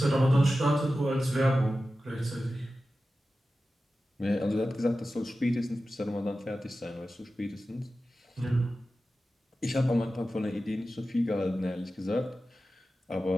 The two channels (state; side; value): normal; both; correlation 0.94